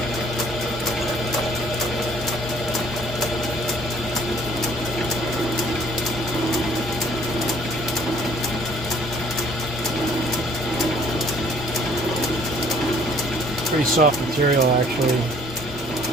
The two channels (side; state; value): both; normal; correlation 0.58